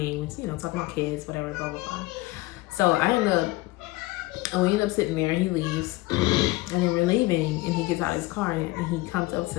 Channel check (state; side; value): quieter; right; 20.6 dB